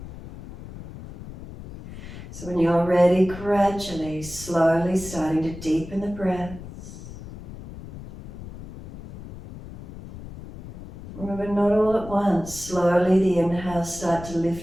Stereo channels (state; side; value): noise; left; rumble, 14 dB below the sound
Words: So when you're ready, gradually, slowly starting to deepen the breaths. Remember, not all at once. Slowly the inhales start to